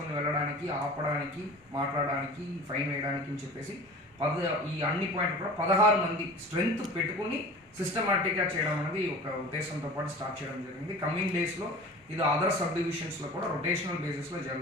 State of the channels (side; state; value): both; normal; correlation 0.39